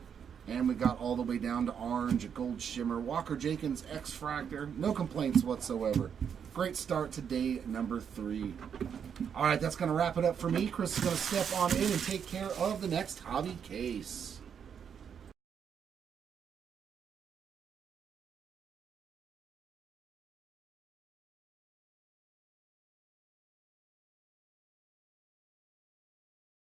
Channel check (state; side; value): quieter; left; 7.6 dB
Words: And we got all the way down to orange, a gold shimmer, Walker Jenkins X-Fractor. No complaints whatsoever. Great start to day number 3. All right, that's going to wrap it up for me. Chris is going to step on in and take care of the next hobby case.